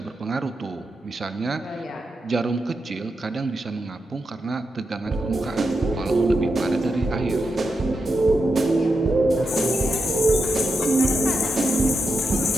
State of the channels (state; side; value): normal; both; correlation 0.87